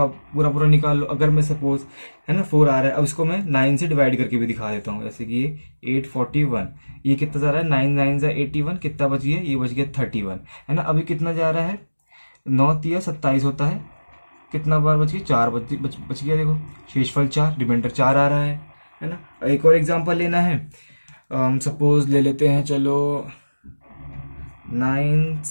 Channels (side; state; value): both; inverted; correlation -1.00